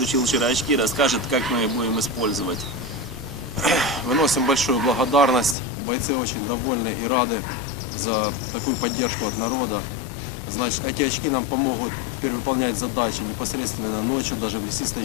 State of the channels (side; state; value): right; drops out; at 5.6 s